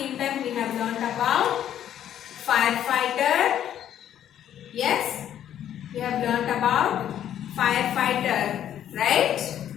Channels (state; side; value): quieter; right; 10.6 dB